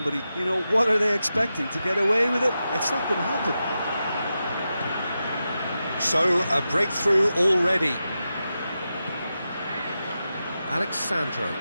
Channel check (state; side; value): inverted; both; correlation -0.90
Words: you know, what are they expecting? To get away with it? It's not going to happen. So, a breakthrough already. Alexandro.